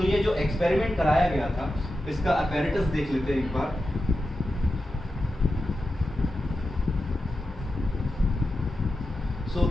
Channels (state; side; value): normal; both; correlation 0.91